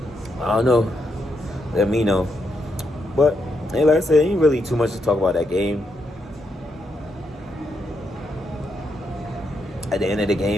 I don't know. Let me know. But hey, like I said, ain't really too much to talk about that game. At the end of the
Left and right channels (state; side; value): normal; both; correlation 0.80